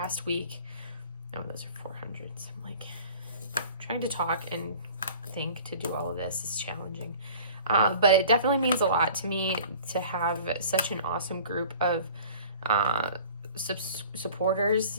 week. Oh, those are 400s. I'm trying to talk and think to do all of this is challenging. But it definitely means a lot to me to have such an awesome group of supporters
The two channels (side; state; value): both; inverted; correlation -0.46